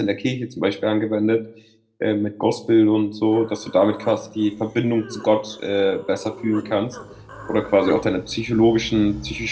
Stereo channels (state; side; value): identical; both; correlation 1.00